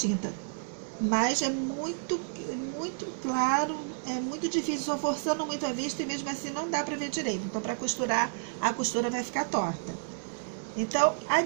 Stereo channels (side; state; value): left; silent; 57 dB below the other